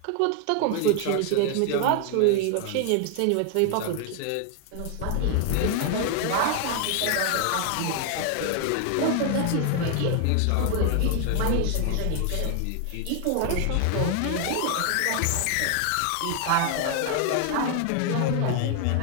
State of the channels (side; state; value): both; different; correlation 0.00